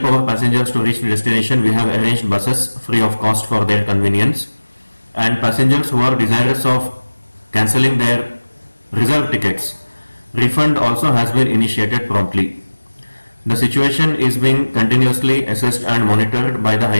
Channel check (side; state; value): both; inverted; correlation -1.00